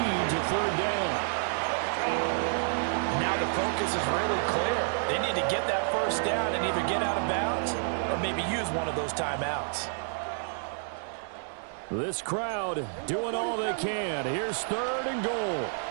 to 3rd down. Now the focus is really clear. They need to get that 1st down and either get out of bounds or maybe use one of those timeouts. This crowd doing all they can. Here's 3rd and goal.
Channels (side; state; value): left; silent; 58 dB below the other